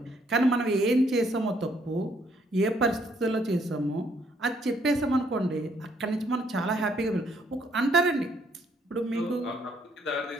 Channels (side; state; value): both; normal; correlation 0.68